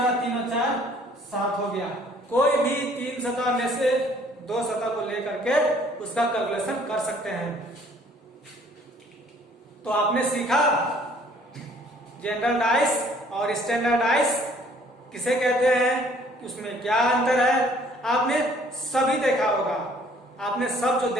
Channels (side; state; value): both; normal; correlation 0.58